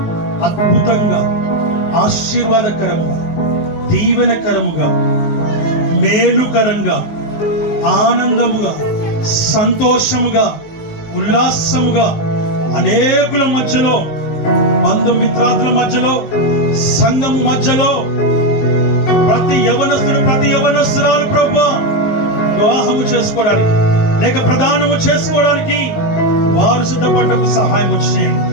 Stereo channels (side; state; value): right; late; 19 ms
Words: అద్భుతంగా, ఆశీర్వాదకరముగా, దీవెనకరముగా, మేలుకరంగా, ఆనందముగా, సంతోషముగా, ఉల్లాసముగా అనేకుల మధ్యలో, బంధుమిత్రాదుల మధ్యలో, సంఘము మధ్యలో ప్రతి యవనస్తుడు, ప్రతి యవనస్తురాలు ప్రభువా వివాహము చేసుకోవడానికి లేక ప్రదానము చేసుకోవడానికి వారు సిద్ధపడటకు సహాయం చేయండి